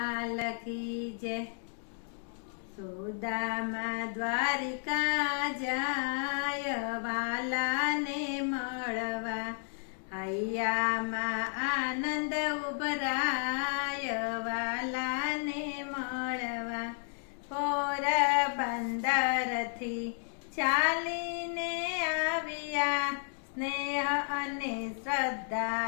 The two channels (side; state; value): right; silent; 55 dB below the other